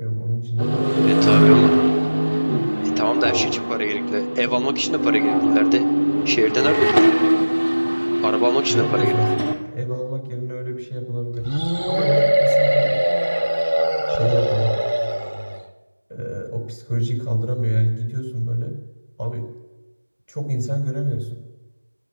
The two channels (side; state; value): both; inverted; correlation -1.00